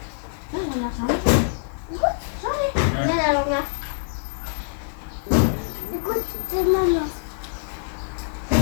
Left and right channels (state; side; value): silent; right; digital silence